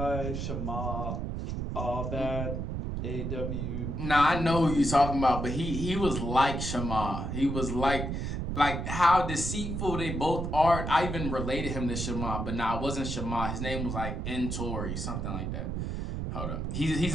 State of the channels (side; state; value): right; noise; rumble, 3 dB below the sound